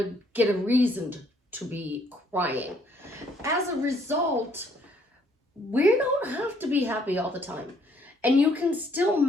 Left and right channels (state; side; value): normal; both; correlation 0.66